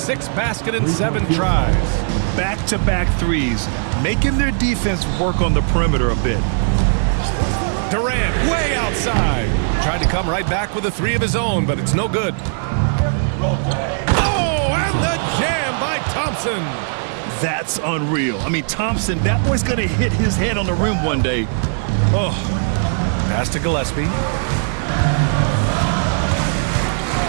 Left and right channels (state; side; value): silent; left; digital silence